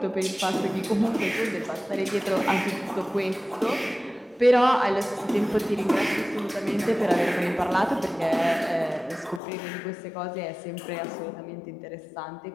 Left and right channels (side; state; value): right; drops out; at 9.4 s